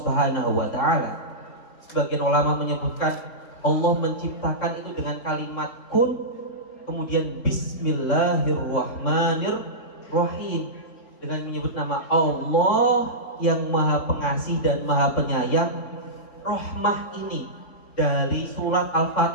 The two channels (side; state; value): right; late; 3.7 ms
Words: wa Ta'ala. Sebagian ulama menyebutkan Allah menciptakan itu dengan kalimat kun, kemudian bismillahirrahmanirrahim, dengan menyebut nama Allah yang maha pengasih dan maha penyayang. Rahmah ini dari surat